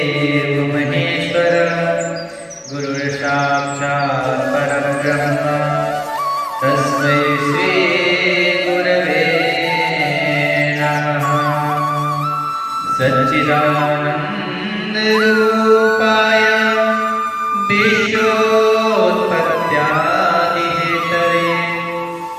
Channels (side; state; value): both; identical; correlation 1.00